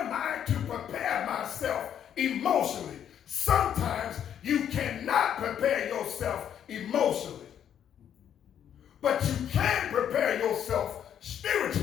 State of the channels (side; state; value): right; quieter; 9.4 dB